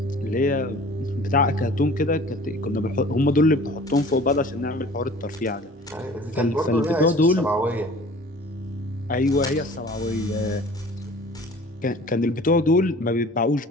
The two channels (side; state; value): both; normal; correlation 0.46